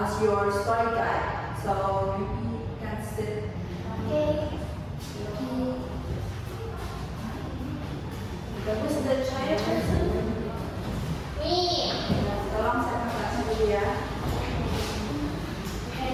your story guide. So you can sit. Okay. Who's the shy person? Me. Tolong saya kasih dulu ya.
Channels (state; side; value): identical; both; correlation 1.00